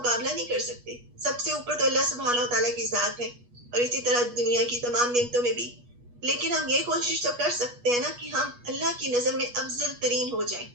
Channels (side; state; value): left; late; 8.3 ms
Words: نہیں کر سکتے. سب سے اوپر تو اللہ سبحانہ و تعالیٰ کی ذات ہے، اور اسی طرح دنیا کی تمام نعمتوں میں بھی. لیکن ہم یہ کوشش تو کر سکتے ہیں نا کہ ہم اللہ کی نظر میں افضل ترین ہو جائیں.